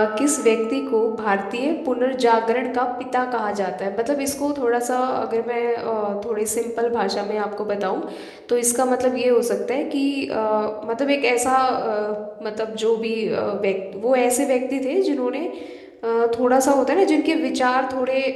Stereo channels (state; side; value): identical; both; correlation 1.00